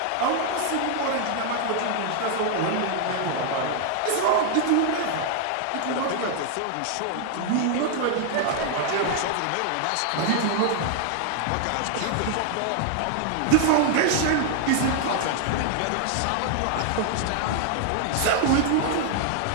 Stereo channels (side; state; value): both; different; correlation 0.00